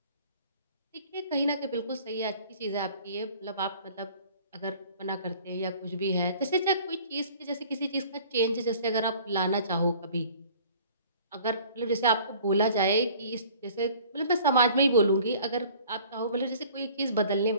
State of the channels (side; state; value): both; inverted; correlation -0.50